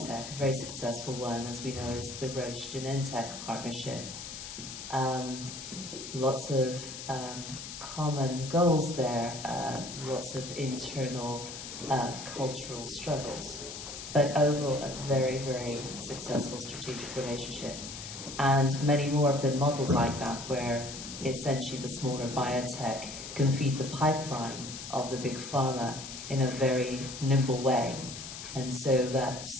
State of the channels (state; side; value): noise; left; hiss, 10 dB below the sound